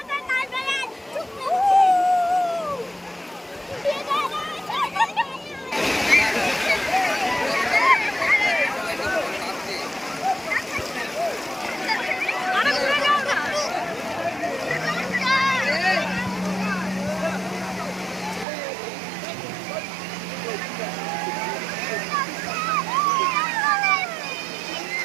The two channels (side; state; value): left; drops out; at 18.4 s